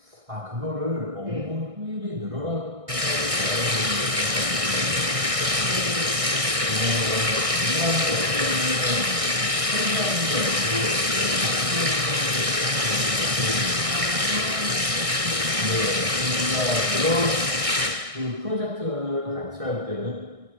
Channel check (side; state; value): left; late; 1.6 ms